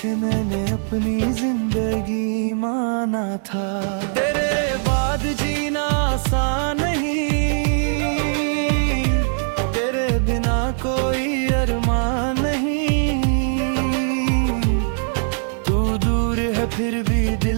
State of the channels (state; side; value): silent; left; 65 dB below the other